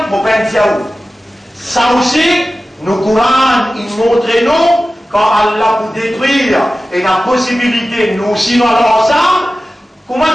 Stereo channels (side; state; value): both; normal; correlation 0.95